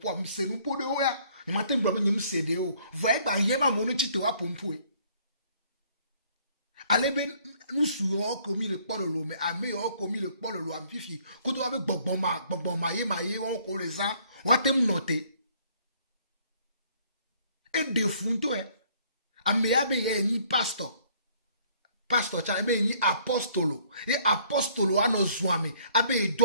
mo se nous po de oya. Ni matin blo ni msede o. Voyez ba yema mo no chite wa pompo e. Ale ben nous souo komi le polo lo, mais ame yo komi le polo lo am fifi. Ko to avec gbon ma ye on ko les ans, wa tem noter. Et de funto e. Ame ya be ye ni pastor. Pastor cha ebe ni apostolo. E apostolo ano zwame. Abe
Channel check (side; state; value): both; inverted; correlation -0.61